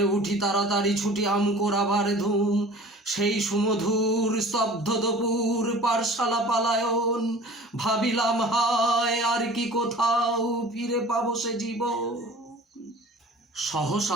উঠি তাড়াতাড়ি ছুটি আম কোরাবার ধুম। সেই সুমধুর স্তব্ধ দুপুর পারশালা পালায়ন, ভাবিলাম হায় আর কি কোথাও ফিরে পাবো সে জীবন।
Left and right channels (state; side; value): normal; both; correlation 0.44